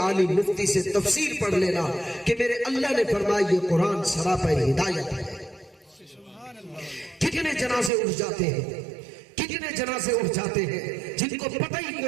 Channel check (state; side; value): drops out; left; at 7.9 s